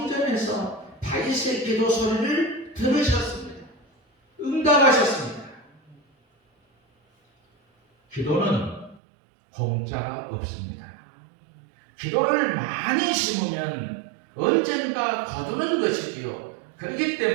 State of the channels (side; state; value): left; drops out; at 9.0 s